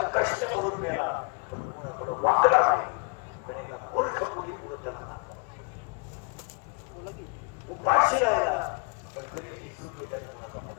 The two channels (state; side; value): quieter; right; 34.1 dB